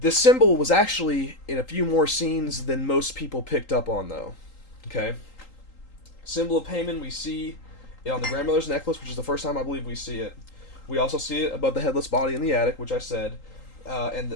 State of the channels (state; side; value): late; right; 3.8 ms